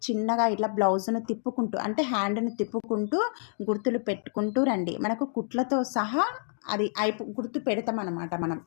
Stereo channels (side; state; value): right; silent; 59 dB below the other